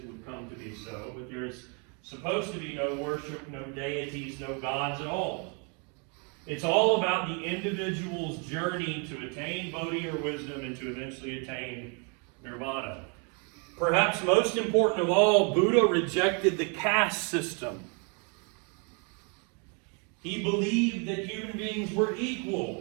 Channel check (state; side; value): quieter; left; 36.2 dB